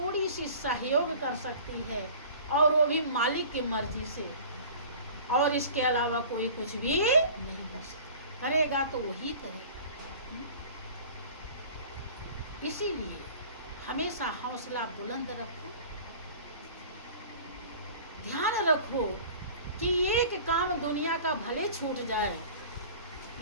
सी सहयोग कर सकती है, और वो भी मालिक की मर्जी से, और इसके अलावा कोई कुछ भी नहीं कर सकता। करेगा तो वही करेगा। इसीलिए हमेशा हौसला बुलंद रखो, ध्यान रखो कि एक काम दुनिया का भले छूट जाए,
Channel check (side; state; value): both; inverted; correlation -0.43